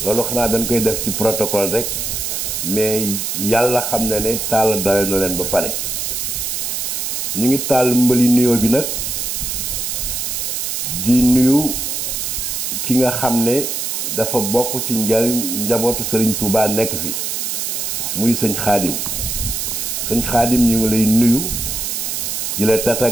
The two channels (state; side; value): noise; right; hiss, 2 dB below the sound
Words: loolu xanaa dañ koy def ci protocole rek mais yàlla xam na ne Talla dalal na leen ba pare ñu ngi taal mbali nuyoo bi nag di nuyu ki nga xam ne dafa bokk ci njabootu Serigne Touba nekk fi muy sëñ Xaadim sëñ Xaadim ñu ngi lay nuyu di la